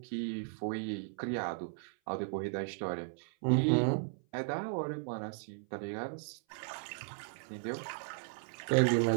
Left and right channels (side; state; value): left; silent; 54 dB below the other